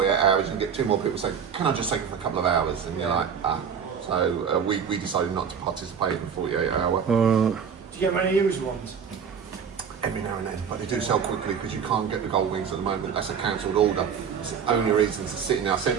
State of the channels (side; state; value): left; quieter; 7.0 dB